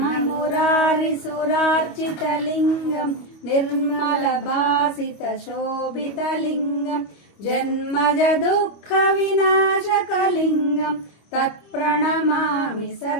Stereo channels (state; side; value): late; right; 25 ms